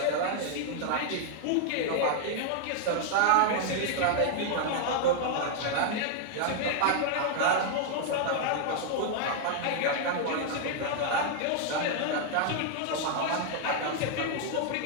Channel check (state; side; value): different; both; correlation 0.00